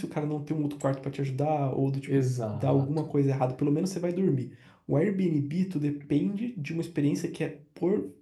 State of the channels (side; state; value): both; identical; correlation 1.00